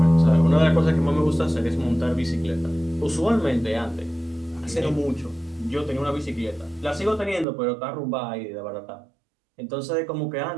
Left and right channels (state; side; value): drops out; left; at 7.5 s